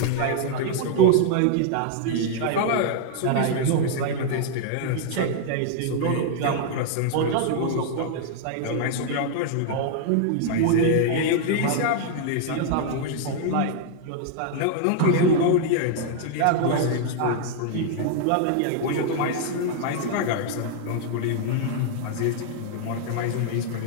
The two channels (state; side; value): different; both; correlation 0.00